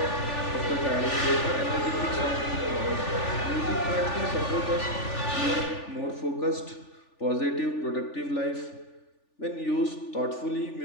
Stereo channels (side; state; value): right; late; 3.4 ms